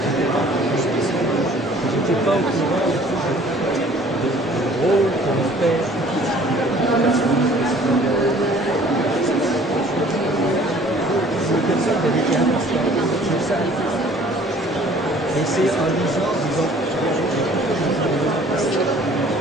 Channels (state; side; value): normal; both; correlation 0.53